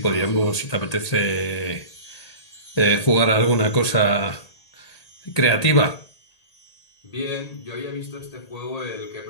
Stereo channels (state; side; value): late; right; 1.8 ms